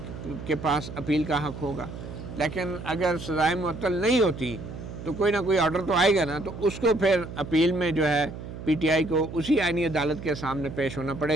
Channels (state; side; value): noise; right; hum, 10 dB below the sound